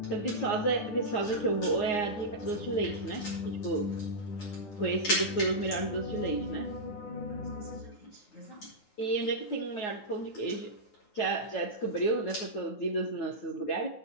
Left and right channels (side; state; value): right; late; 9.6 ms